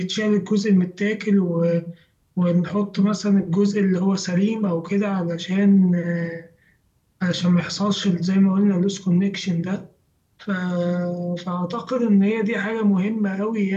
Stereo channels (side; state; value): both; identical; correlation 1.00